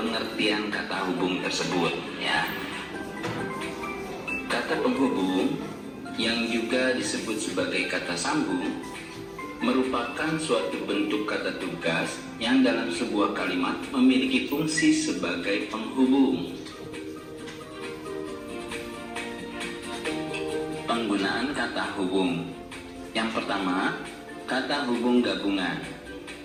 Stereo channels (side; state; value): both; identical; correlation 1.00